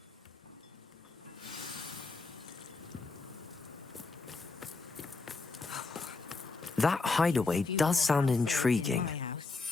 That hideaway does sound intriguing.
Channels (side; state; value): right; quieter; 3.9 dB